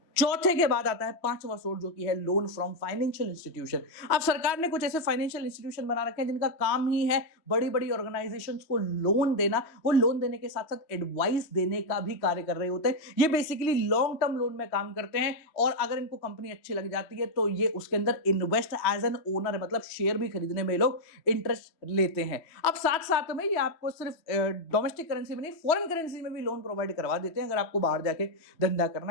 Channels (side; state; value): right; late; 3.0 ms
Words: चौथे के बाद आता है पांचवा सोर्स जो कि है लोन फ्रॉम फाइनेंशियल इंस्टीट्यूशन। अब सरकार ने कुछ ऐसे फाइनेंशियल इंस्टीट्यूशन बना रखे हैं जिनका काम ही है बड़ी बड़ी ऑर्गेनाइजेशंस को लोन देना। वो लोन देने के साथ साथ एडवाइस देने का भी कार्य कर रहे होते हैं। ये बेसिकली लॉन्ग टर्म लोन में काम करते हैं और अगर इनको कंपनी अच्छी लग जाती है तो ये उसके अंदर इन्वेस्ट एज एन ओनर है, मतलब शेयर भी खरीदने में लोग इंटरेस्ट लेते हैं। अब साथ साथ में ये आपको सिर्फ डोमेस्टिक करेंसी में नहीं, फॉरेन करेंसी में भी लोन प्रोवाइड करवा देते हैं अगर आपको बाहर जाके धंधा करना